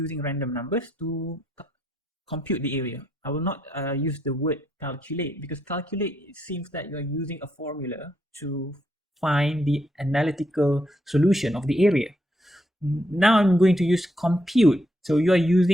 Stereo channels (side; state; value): both; normal; correlation 0.77